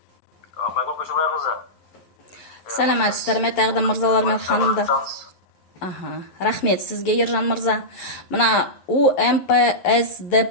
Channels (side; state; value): right; late; 11 ms